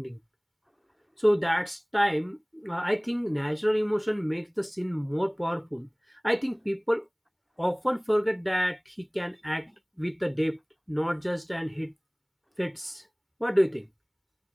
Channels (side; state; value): both; identical; correlation 1.00